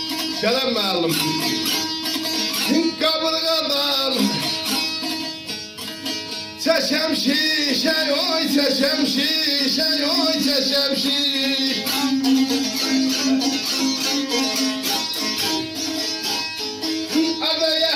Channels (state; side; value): identical; both; correlation 1.00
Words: Selam mağlum. Kaburgadan çeşem şişe, oy çeşem şişe, oy çeşem şişe. Ada